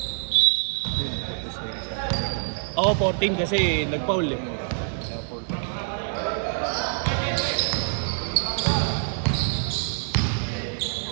Oo, 14 kasi nag-foul eh.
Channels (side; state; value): left; silent; digital silence